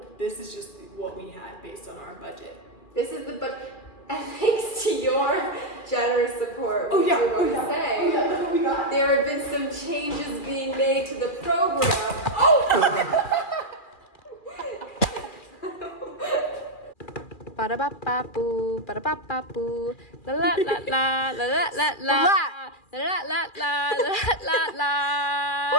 This is just what we had based on our budget. This is the budget. And thanks to your generous support, we Look what we got. There have been some changes being made to the program. Ba-da-ba-ba-boo, ba-da-ba-ba-boo, la-la-la-la, la-la-la-la, la-la-la-la, la-la-la-la.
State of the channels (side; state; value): right; late; 2.4 ms